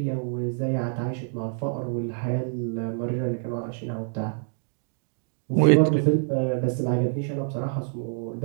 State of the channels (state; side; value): silent; left; digital silence